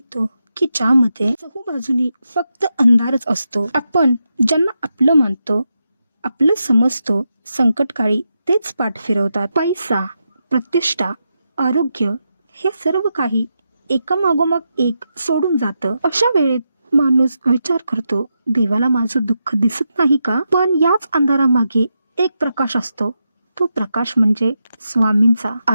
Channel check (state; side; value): inverted; both; correlation -0.86